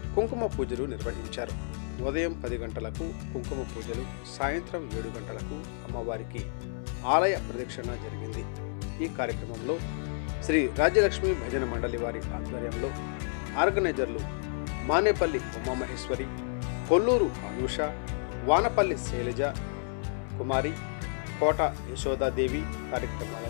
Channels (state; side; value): silent; right; 57 dB below the other